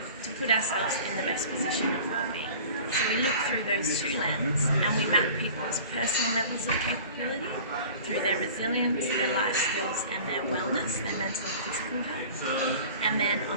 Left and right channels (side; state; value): both; inverted; correlation -0.43